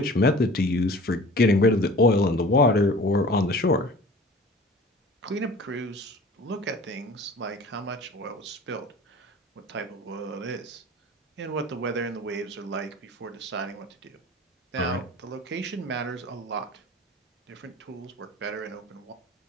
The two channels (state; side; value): normal; both; correlation 0.43